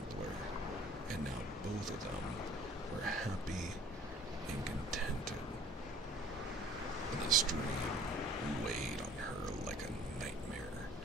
and now both of them were happy and contented. And this dream weighed on her like a nightmare,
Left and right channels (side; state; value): both; normal; correlation 0.50